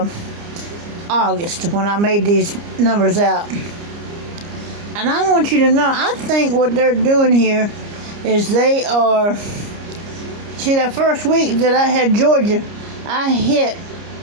August when I made these numbers out. And I want you to know, I think what they're doing here is they are, see, that first week that I had Georgia, I hit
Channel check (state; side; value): late; left; 29 ms